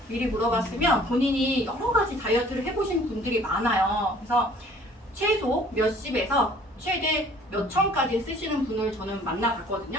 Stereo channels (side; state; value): both; normal; correlation 0.54